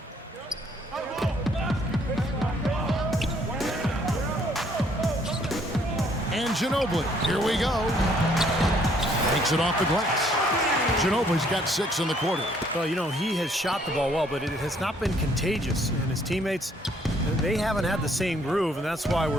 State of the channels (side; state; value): both; normal; correlation 0.64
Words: And Ginobili, here we go. Takes it off the glass. Ginobili's got 6 in the quarter. Well, he has shot the ball well, but it has not been contagious. And his teammates, they haven't had the same groove, and that's why